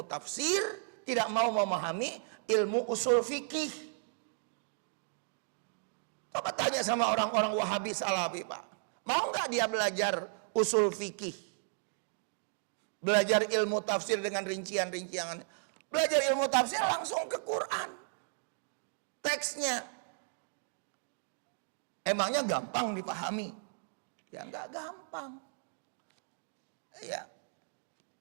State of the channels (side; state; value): left; silent; digital silence